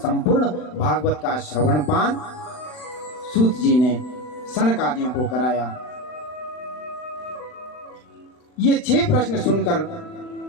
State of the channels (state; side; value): late; right; 40 ms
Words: भागवत का श्रवण पान सूत जी ने सनकादियों को कराया। ये 6 प्रश्न सुनकर